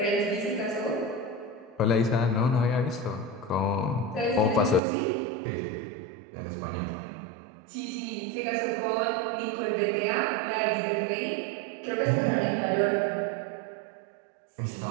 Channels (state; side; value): drops out; left; at 4.8 s